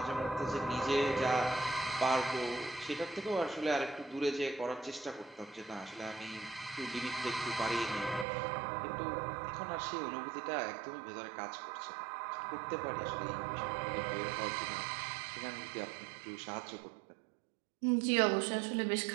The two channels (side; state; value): left; drops out; at 8.2 s